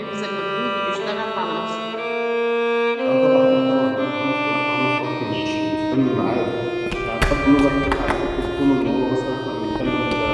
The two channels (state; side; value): identical; both; correlation 1.00